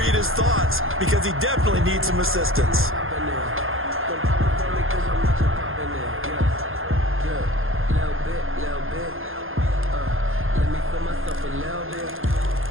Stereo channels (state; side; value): late; left; 0.60 ms